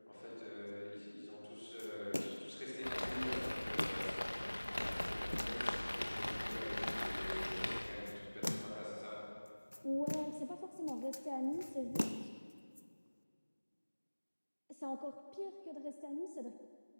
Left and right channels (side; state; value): both; inverted; correlation -1.00